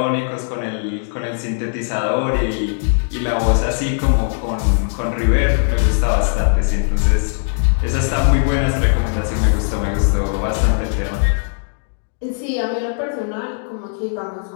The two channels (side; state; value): right; silent; digital silence